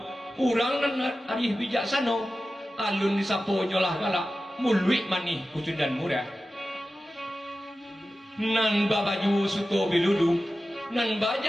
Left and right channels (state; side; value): normal; both; correlation 0.94